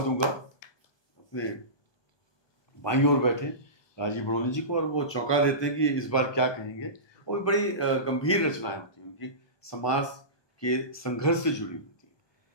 अपने बाईं ओर बैठे राजीव बड़ोनी जी को, और वो चौंका देते हैं कि इस बार क्या कहेंगे। वो भी बड़ी गंभीर रचनाएं होती हैं उनकी, समाज के संघर्ष से जुड़ी हुई थी।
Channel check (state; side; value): late; right; 1.2 ms